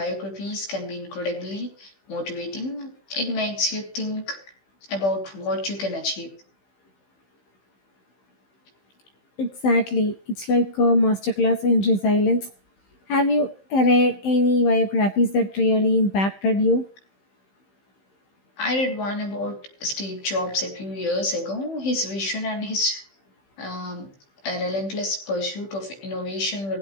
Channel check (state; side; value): late; right; 15 ms